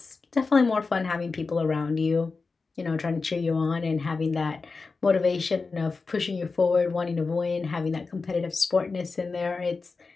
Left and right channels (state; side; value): quieter; right; 4.3 dB